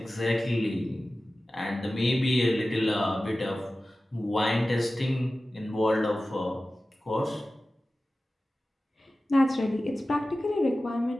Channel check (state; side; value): normal; both; correlation 0.96